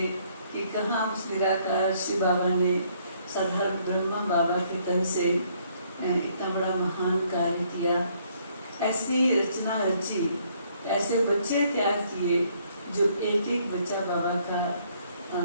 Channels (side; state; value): both; inverted; correlation -0.66